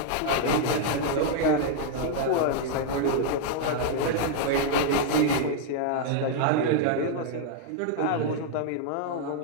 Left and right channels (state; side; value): different; both; correlation -0.01